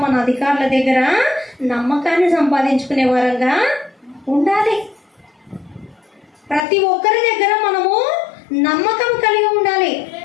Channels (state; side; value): drops out; right; at 6.6 s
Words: మన అధికారుల దగ్గర నమ్మకాన్ని సంపాదించుకునే వారంగా ఉండాలి. ప్రతి ఒక్కరి దగ్గర మనము నమ్మకం కలిగి ఉండాలి.